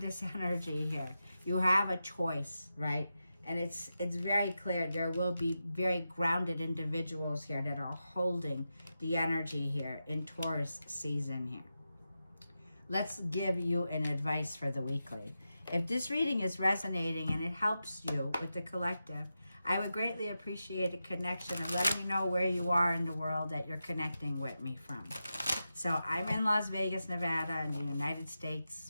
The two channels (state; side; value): inverted; both; correlation -0.90